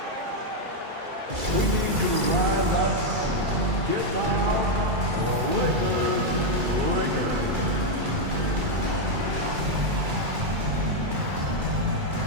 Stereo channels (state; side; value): late; left; 2.3 ms